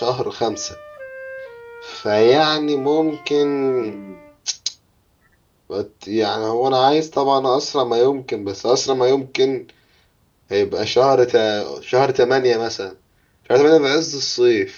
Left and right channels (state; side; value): identical; both; correlation 1.00